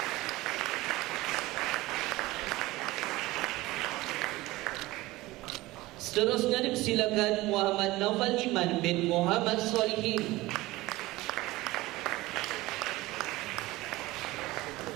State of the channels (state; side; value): quieter; left; 19.1 dB